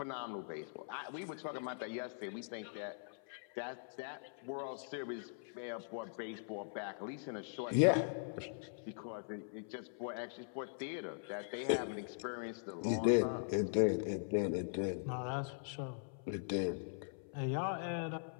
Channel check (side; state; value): right; silent; 50 dB below the other